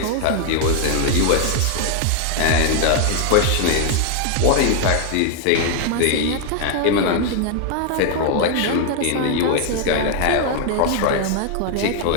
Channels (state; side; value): different; both; correlation 0.00